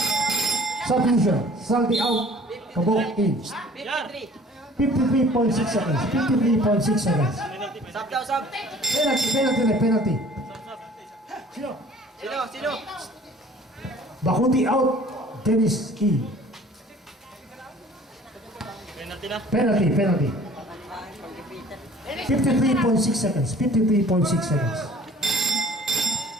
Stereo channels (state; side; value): normal; both; correlation 0.50